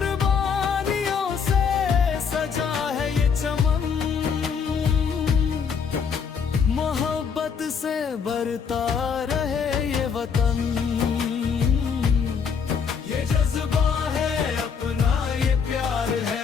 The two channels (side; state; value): right; quieter; 6.4 dB